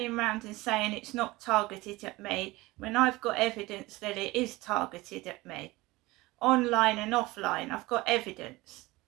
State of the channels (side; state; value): left; quieter; 20.7 dB